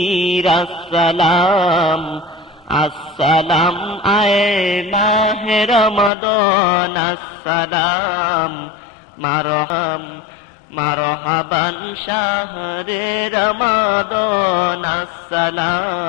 আসসালাম। আসসালাম আয়ে মাহে রমাদান, আসসালাম মারহাবান শাহরে রমাদান,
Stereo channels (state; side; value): drops out; right; at 6.1 s